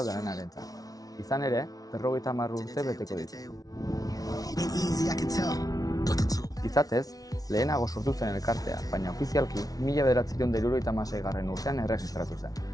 danenarentzat. Izan ere, 50 urte beteko ditu. Izatez, lehenago sortu zen elkartea, baina ofizialki 1976. urtean erregistratu zen.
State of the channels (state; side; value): late; right; 0.18 ms